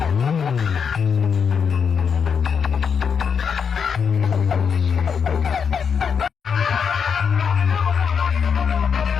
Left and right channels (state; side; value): quieter; right; 6.6 dB